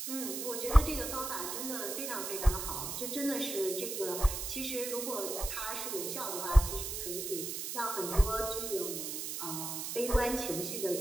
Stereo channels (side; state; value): right; noise; hiss, 4 dB below the sound